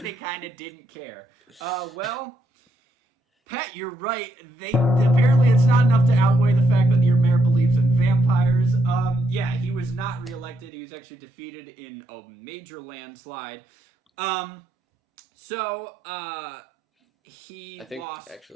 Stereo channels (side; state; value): both; normal; correlation 0.76